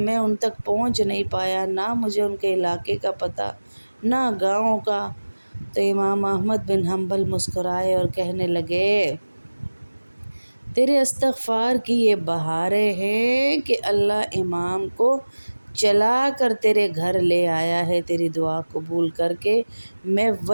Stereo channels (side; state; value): both; inverted; correlation -1.00